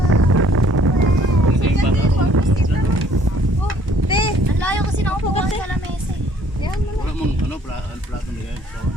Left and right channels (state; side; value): normal; both; correlation 0.60